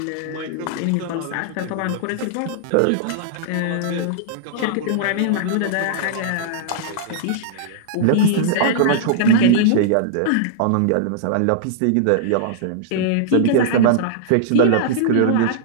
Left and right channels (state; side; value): different; both; correlation -0.01